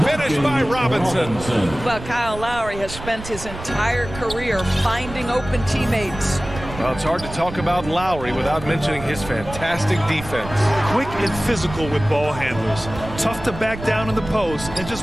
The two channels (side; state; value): right; noise; rumble, 12 dB below the sound